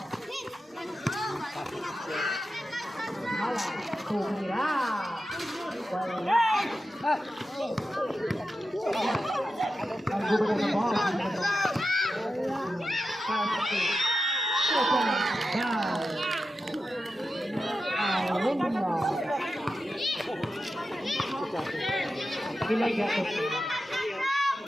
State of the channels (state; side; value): normal; both; correlation 0.91